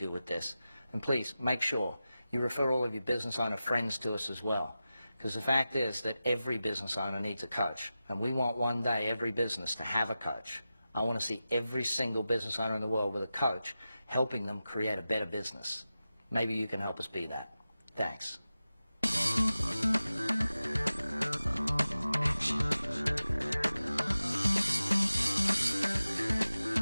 with this. And please make sure you refer all of your business owner friends to us as well. Because the fact is that every business owner needs a coach. And we want one day every business to have a coach. I want to see every single business owner in the world with a coach helping them create a better business. Maybe you can help us be that. Thanks.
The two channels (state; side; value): inverted; both; correlation -0.93